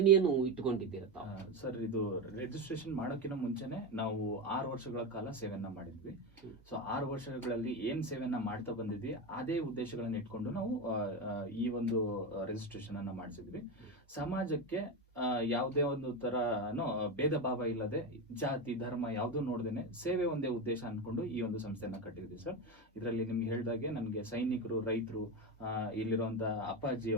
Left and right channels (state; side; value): normal; both; correlation 0.16